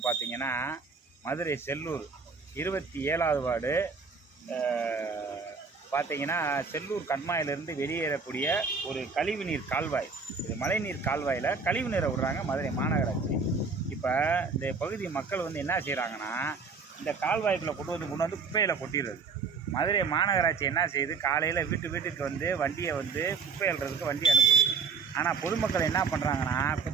பார்த்திங்கன்னா மதுரை செல்லூர் 27வது வார்டு. பார்த்திங்கன்னா செல்லூர் கண்மாயிலிருந்து வெளியேறக்கூடிய ஒரு கழிவுநீர் கால்வாய். இது மழைநீர் கால்வாயில் கழிவு நீரை விடுறாங்க மதுரை மாநகராட்சி. இப்போ இந்த பகுதி மக்கள் வந்து என்ன செய்கிறாங்கன்னா, இந்த கால்வாய்க்குள்ளே கொண்டு வந்து குப்பையில் கொட்டிடுறது. மதுரை மாநகராட்சி என்ன செய்யுது, காலையில் வீட்டுக்கு வந்து வண்டியை வந்து குப்பை அள்ளுறதுக்கு வண்டி அனுப்புது. ஆனால் பொதுமக்கள் என்ன பண்ணுறாங்கன்னா,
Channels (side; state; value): left; quieter; 4.9 dB